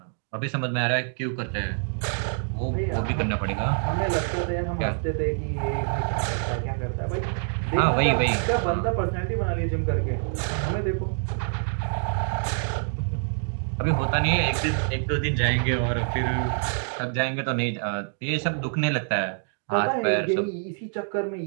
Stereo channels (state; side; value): silent; left; 61 dB below the other